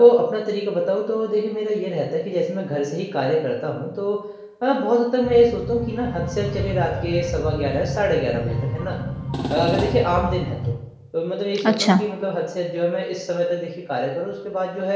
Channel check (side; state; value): both; identical; correlation 1.00